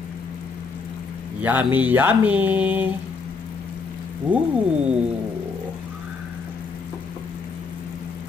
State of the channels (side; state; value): right; quieter; 4.7 dB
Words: Yummy, yummy. Woo!